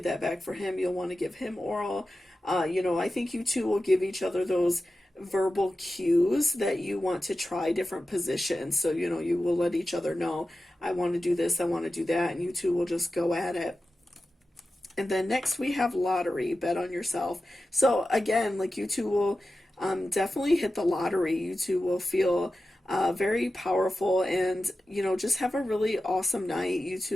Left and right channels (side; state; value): both; normal; correlation 0.93